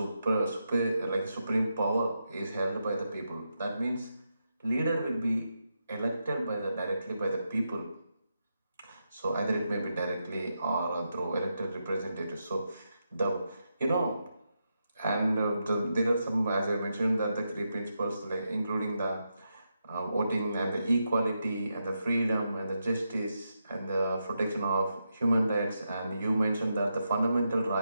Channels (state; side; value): inverted; both; correlation -0.85